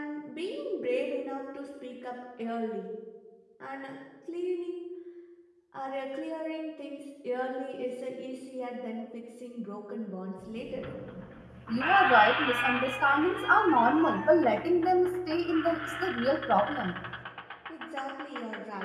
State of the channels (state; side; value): identical; both; correlation 1.00